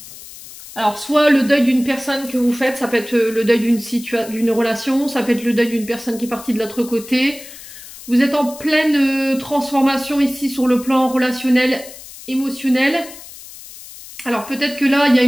Alors, soit le deuil d'une personne que vous faites, ça peut être le deuil d'une relation, ça peut être le deuil d'une personne qui est partie de l'autre côté. Vous êtes en pleine transformation ici sur le plan relationnel, émotionnel. Alors, peut-être que là, il y a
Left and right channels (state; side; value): noise; left; hiss, 16 dB below the sound